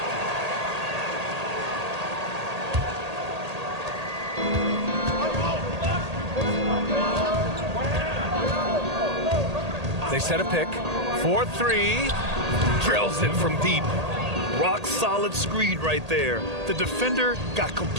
They set a pick. 4-3. Drills it from deep. Rock solid screen right there. The defender got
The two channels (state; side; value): late; left; 1.8 ms